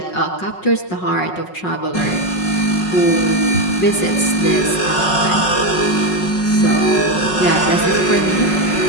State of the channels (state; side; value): late; right; 5.5 ms